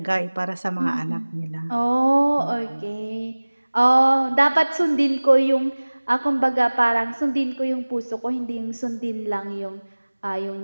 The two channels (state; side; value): inverted; both; correlation -1.00